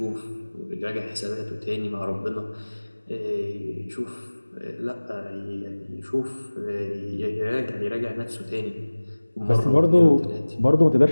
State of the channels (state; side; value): inverted; both; correlation -1.00